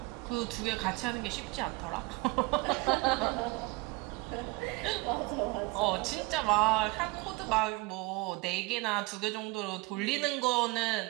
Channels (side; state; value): left; quieter; 23.6 dB